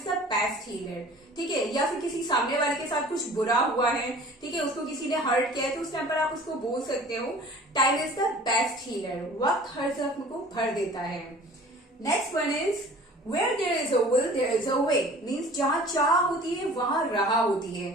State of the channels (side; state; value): both; normal; correlation 0.46